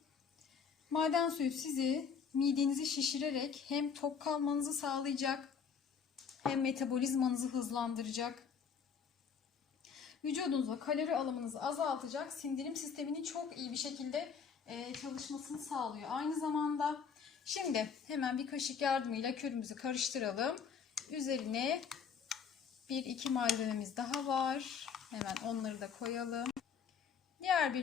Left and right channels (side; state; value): right; quieter; 6.5 dB